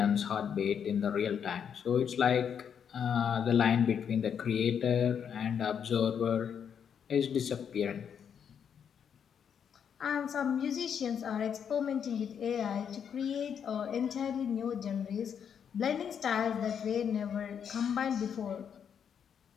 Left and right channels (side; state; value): right; quieter; 7.8 dB